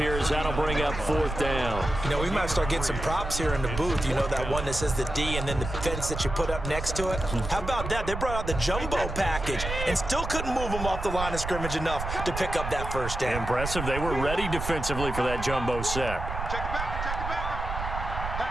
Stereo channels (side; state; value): right; noise; rumble, 6 dB below the sound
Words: as that'll bring up fourth down. You know, we might start getting some props here in the booth. You know, that one that says the D and then the fence that you put up next to it? How about that? They brought out the jumbo package and still couldn't move them off the line of scrimmage enough to pick up that first down. Impressive. They were ready defensively for that jumbo set. Check the back.